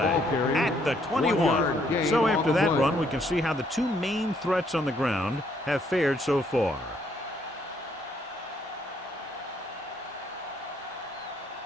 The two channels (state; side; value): normal; both; correlation 0.69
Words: at the 21. So after that run, we can see how the two main threats on the ground have fared so far.